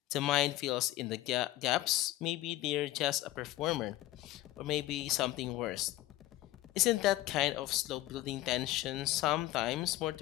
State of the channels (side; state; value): right; quieter; 16.1 dB